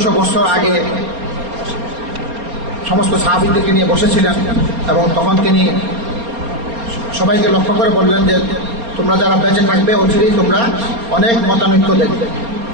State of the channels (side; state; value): left; late; 4.3 ms